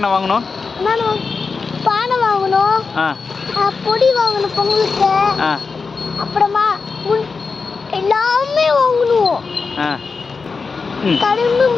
வாங்கணும்? பானை வாங்கணும், பொடி வாங்கணும் பொங்கலுக்கு, அப்புறமா எல்லாமே வாங்கணும். கரும்பு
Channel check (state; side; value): quieter; right; 4.7 dB